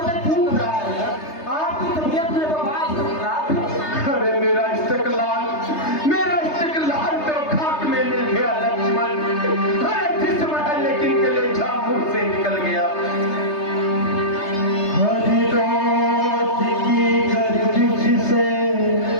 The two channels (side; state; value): right; late; 3.3 ms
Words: क्यों घबरा रहे हैं? आपकी तबीयत में तो बड़ा इस्तकलाल था। अरे मेरा इस्तकलाल तो खाक में मिल गया लक्ष्मण। अरे जिस्म है लेकिन कलेजा मुंह से निकल गया। हरी रोज की गर्दिश से